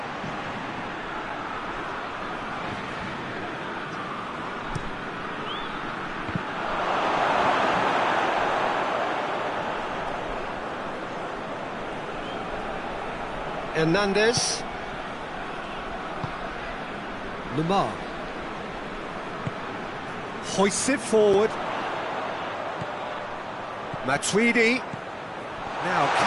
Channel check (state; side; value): identical; both; correlation 1.00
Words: Hernandez. Lamar. Hoists it forward. Matuidi. Now